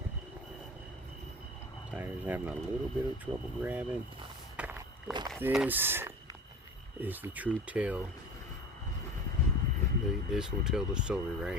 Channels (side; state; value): both; normal; correlation 0.36